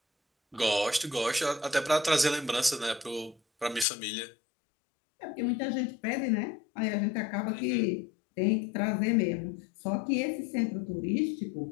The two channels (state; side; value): drops out; right; at 3.9 s